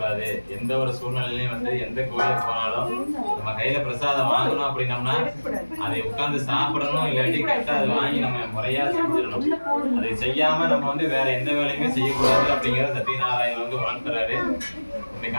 எந்த ஒரு சூழ்நிலையிலையும் வந்து எந்த கோயிலுக்கு போனாலும் நம்ம கையில பிரசாதம் வாங்கணும் அப்படின்னம்னா அதை உட்கார்ந்து சாப்பிடணும், இல்லாட்டி கரெக்டா அதை வாங்கி நம்ம முறையா செஞ்சிடணும். அதை செய்யாம நம்ம வந்து வேற எந்த வேலையுமே செய்யக்கூடாது அப்படிங்கிறத சத்யநாராயணன் வந்து உணர்த்துறாரு. இந்த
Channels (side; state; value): both; inverted; correlation -1.00